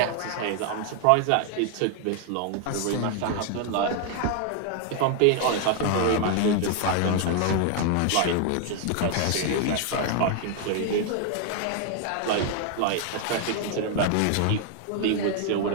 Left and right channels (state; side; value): different; both; correlation 0.00